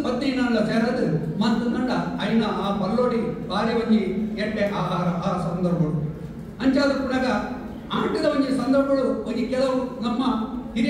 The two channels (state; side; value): identical; both; correlation 1.00